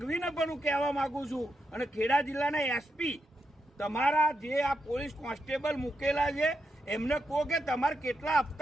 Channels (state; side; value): normal; both; correlation 0.84